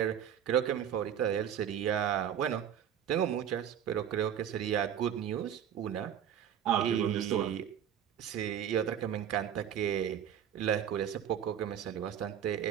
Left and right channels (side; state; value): left; quieter; 9.4 dB